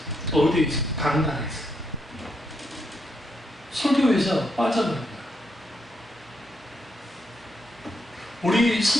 어디에 있어요? 다른 나라에 있어요. 설교에서 빠져버립니다. 우리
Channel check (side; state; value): both; normal; correlation 0.79